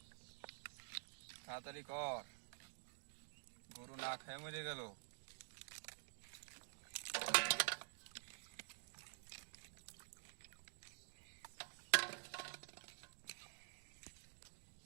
তাড়াতাড়ি কর গরু না খেয়ে মরে গেল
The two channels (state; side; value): silent; left; digital silence